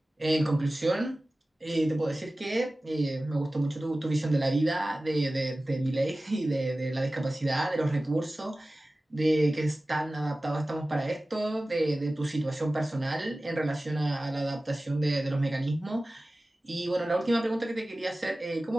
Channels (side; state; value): both; normal; correlation 0.97